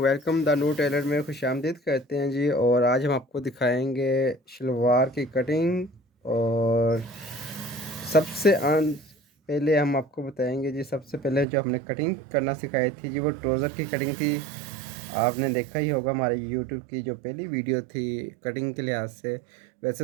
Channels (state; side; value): drops out; left; at 11.5 s